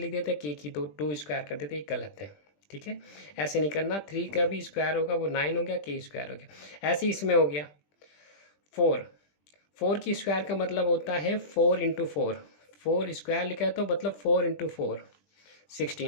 देते हैं के की, तो 2 स्क्वायर कर देते हैं, ये गलत है। ठीक है, ऐसे नहीं करना। 3 का भी स्क्वायर होगा वो 9 हो गया, के स्क्वायर हो गया। ऐसे इसमें हो गया 4, 4 की स्क्वायर का मतलब होता है 4 इंटू 4, 4 स्क्वायर लिखा है तो मतलब 4 इंटू 4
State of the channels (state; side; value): late; right; 20 ms